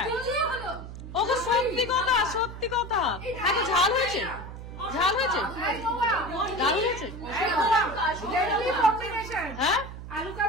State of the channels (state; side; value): noise; right; hum, 11 dB below the sound